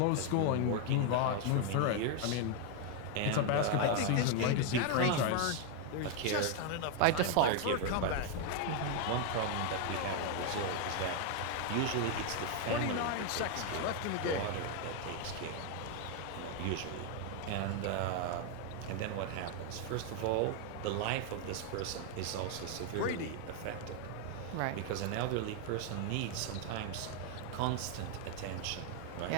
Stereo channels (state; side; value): different; both; correlation 0.01